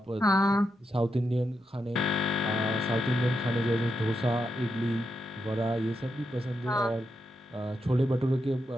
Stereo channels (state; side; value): normal; both; correlation 0.84